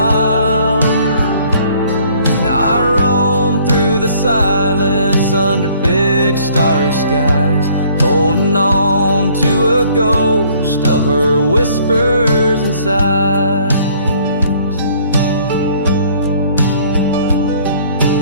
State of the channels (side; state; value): both; inverted; correlation -0.59